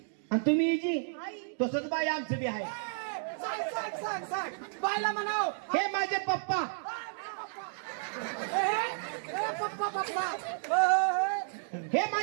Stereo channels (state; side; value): silent; left; digital silence